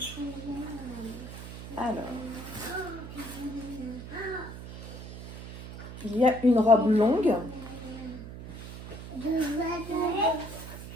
Alors, il y a une robe longue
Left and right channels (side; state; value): right; noise; hum, 11 dB below the sound